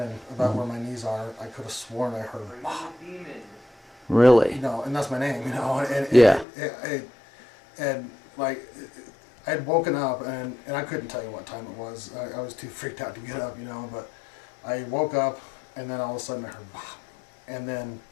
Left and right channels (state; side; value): drops out; right; at 6.5 s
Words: about where my knees are, I could have sworn I heard Bob. Really? You know, and that's my name, you know. And, yeah. And like, I had woken up, and I couldn't tell you what time it was. I was too freaked out to get up, you know, but I woke up, and then all of a sudden I heard Bob. And then,